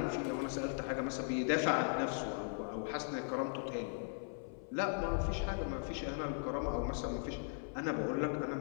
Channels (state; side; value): silent; right; 52 dB below the other